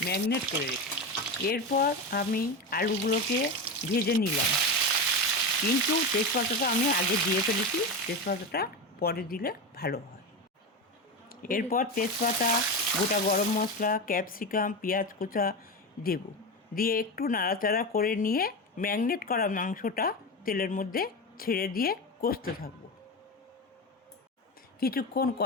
ম্যারিনেট করে রেখে এরপর আমি আলুগুলোকে ভেজে নিলাম, কিন্তু তেজপাতাটা আমি আগে দিয়ে ফেলেছি, তেজপাতাটা পরে দিলে ভালো হয়। এরপর তেজপাতা, গোটা গরম মশলা, ক্যাপসিকাম, পেঁয়াজ কুচা দেব, দিয়ে একটু নাড়াচাড়া করে নিয়ে ম্যারিনেট করা মাংসটা তেলের মধ্যে ছেড়ে দিয়ে কষতে থাকবো। কিছুক্ষণ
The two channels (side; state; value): both; normal; correlation 0.19